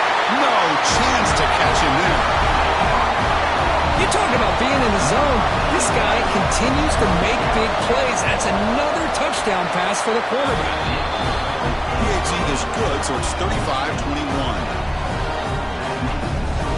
No chance to catch him there. You talk about being in the zone. This guy continues to make big plays. That's another touchdown pass for the quarterback. PAT is good, so it's 35-21.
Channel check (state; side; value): identical; both; correlation 1.00